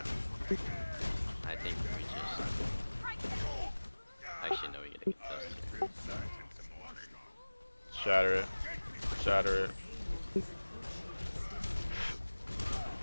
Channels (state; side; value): inverted; both; correlation -1.00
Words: I think we just. Actually, no, we get a contest. Shatter it. Shatter it.